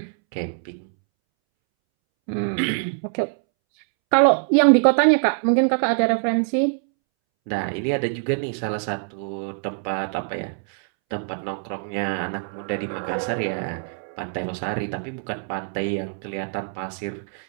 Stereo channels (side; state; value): left; silent; 63 dB below the other